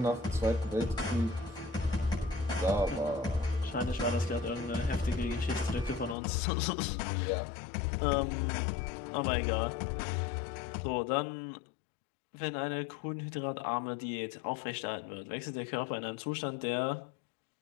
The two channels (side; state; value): right; drops out; at 6.2 s